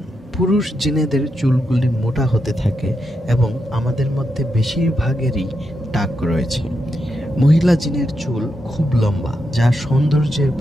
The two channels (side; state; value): both; normal; correlation 0.85